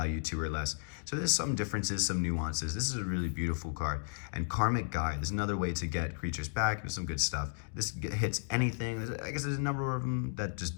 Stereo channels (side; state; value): right; silent; digital silence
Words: 2 or less. So there's some differences, some nuances. This is a really beautiful card. And Karmic Guide is another way to get creatures back. There's some good stuff. This hits anything. I guess there's a number of them that just